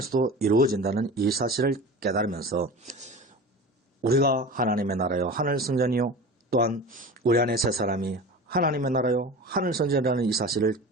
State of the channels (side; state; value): both; normal; correlation 0.34